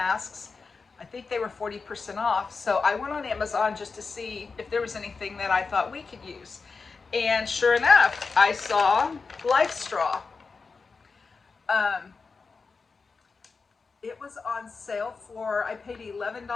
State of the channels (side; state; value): right; quieter; 4.6 dB